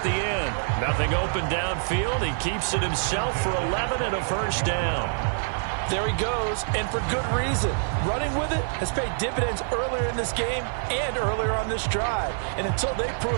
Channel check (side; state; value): left; silent; 56 dB below the other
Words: the end. Nothing open downfield. He keeps it himself for 11 and a first down. There he goes, and for good reason. Running with it has paid dividends earlier in this game and earlier on this drive. And until they